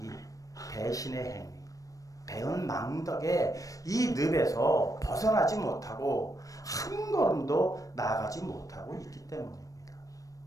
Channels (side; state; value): right; late; 0.16 ms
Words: 이 배신의 행위, 배은망덕의 이 늪에서 벗어나지 못하고 한 걸음도 나아가지 못하고 있기 때문입니다.